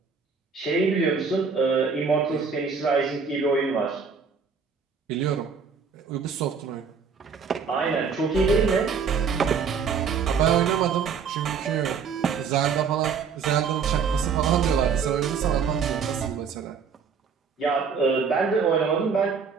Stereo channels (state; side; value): quieter; left; 5.9 dB